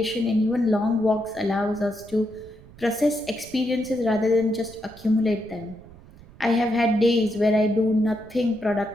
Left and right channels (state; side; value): noise; right; rumble, 21 dB below the sound